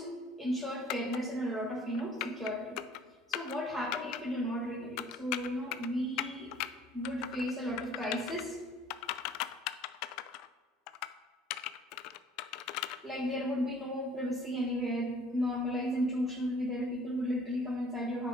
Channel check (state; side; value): normal; both; correlation 0.54